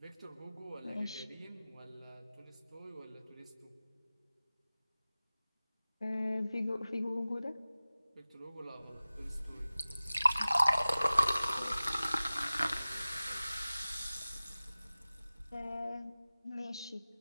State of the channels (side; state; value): both; inverted; correlation -0.97